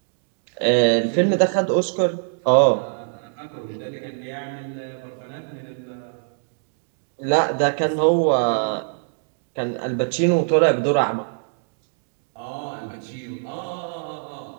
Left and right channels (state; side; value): silent; left; digital silence